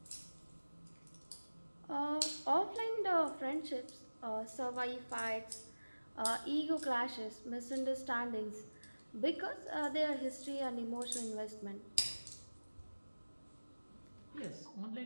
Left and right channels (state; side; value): inverted; both; correlation -1.00